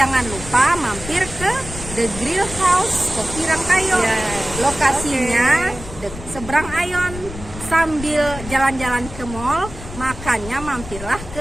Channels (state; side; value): noise; left; rumble, 12 dB below the sound